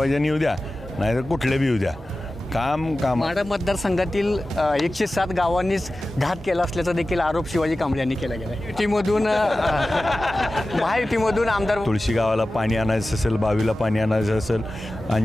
येऊ द्या नाहीतर कुठले बी येऊ द्या, काम माढा मतदारसंघातील 107 गावांनीच घात केला असल्याचा देखील आरोप शिवाजी कांबळे यांनी केला गेला. युतीमधून महायुतीमधून आमदार तुळशी गावाला पाणी आणायचं असेल, बावीला पाणी आणायचं असेल,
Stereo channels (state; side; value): normal; both; correlation 0.95